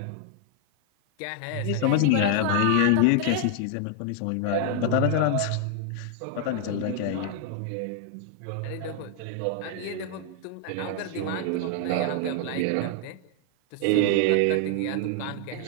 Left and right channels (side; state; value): both; different; correlation 0.00